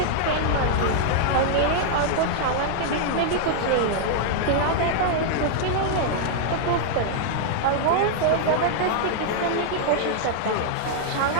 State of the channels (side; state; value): both; different; correlation -0.01